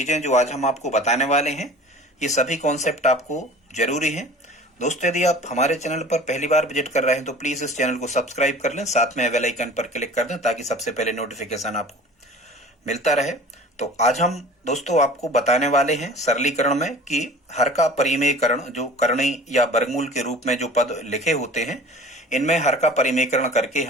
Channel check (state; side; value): normal; both; correlation 0.43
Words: जो आज हम आपको बताने वाले हैं, ये सभी कॉन्सेप्ट आपको जरूरी हैं। दोस्तों, यदि आप हमारे चैनल पर पहली बार विजिट कर रहे हैं तो प्लीज इस चैनल को सब्सक्राइब कर लें, साथ में बेल आइकन पर क्लिक कर दें ताकि सबसे पहले नोटिफिकेशन आपको मिलता रहे। तो आज हम दोस्तों आपको बताने वाले हैं सरलीकरण में कि हर का परिमेयकरण, जो करणी या वर्गमूल के रूप में जो पद लिखे होते हैं, इनमें हर का परिमेयकरण करके